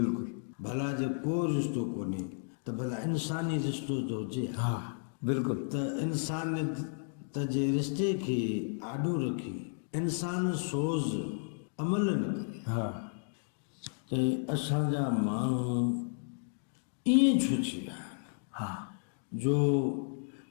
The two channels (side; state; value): right; silent; digital silence